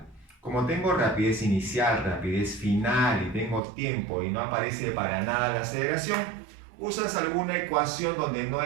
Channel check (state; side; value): drops out; left; at 3.6 s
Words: Como tengo rapidez inicial, rapidez final y tengo tiempo y no aparece para nada la aceleración, usas alguna ecuación donde no